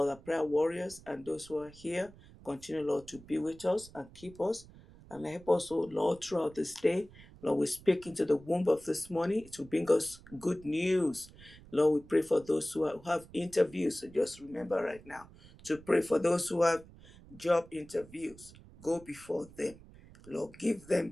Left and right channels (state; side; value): noise; right; rumble, 21 dB below the sound